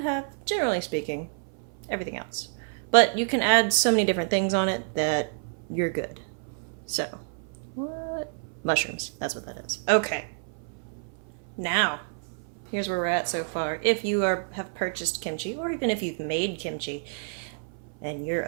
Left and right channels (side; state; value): left; silent; 55 dB below the other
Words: generally speaking, everything else. But you can add so many different things on it that you're good. So, what? Mushrooms, that's what that is. Okay. Now, here's where we're at so far. If you have purchased kimchi, or even if you've made kimchi, and you're